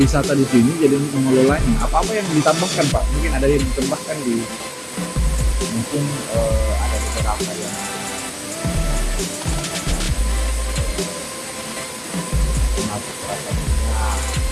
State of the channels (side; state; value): both; identical; correlation 1.00